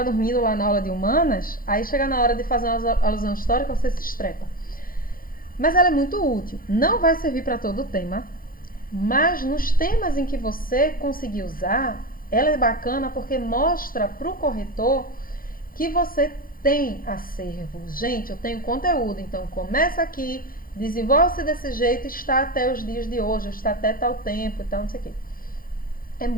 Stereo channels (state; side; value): late; right; 0.41 ms